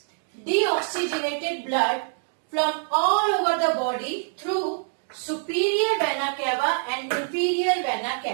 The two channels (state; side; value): silent; left; digital silence